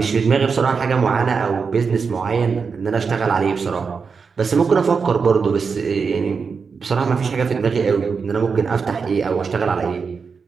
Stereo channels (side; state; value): left; quieter; 5.4 dB